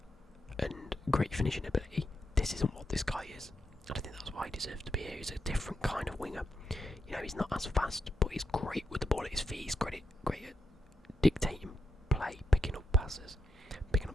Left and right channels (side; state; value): both; normal; correlation 0.84